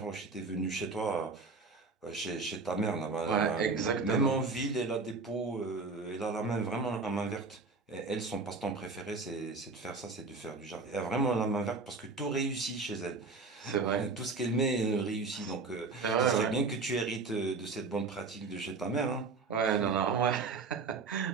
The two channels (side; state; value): left; quieter; 4.1 dB